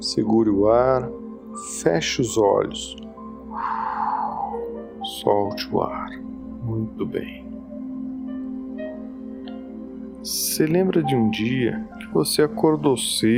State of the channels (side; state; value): both; identical; correlation 1.00